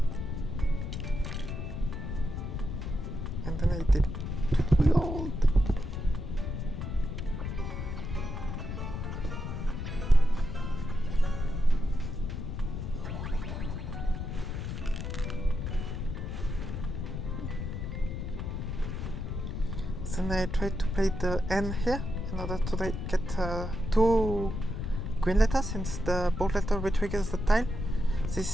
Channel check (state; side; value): noise; left; rumble, 4 dB below the sound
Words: And then I did rerolled. Then I tried to play the N here in order to get 2 green letters, since the bold letter retriggers the tile.